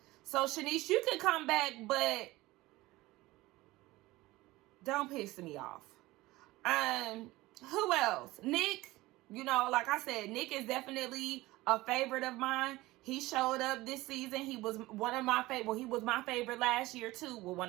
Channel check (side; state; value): left; quieter; 19.1 dB